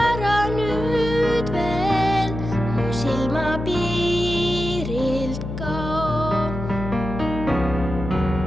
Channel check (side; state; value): left; noise; hum, 6 dB below the sound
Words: nüüd veel, mu silmapiirilt kao.